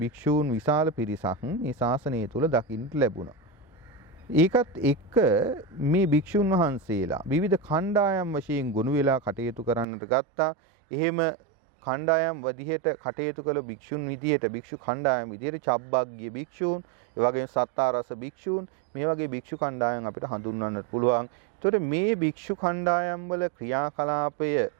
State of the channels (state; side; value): drops out; left; at 9.9 s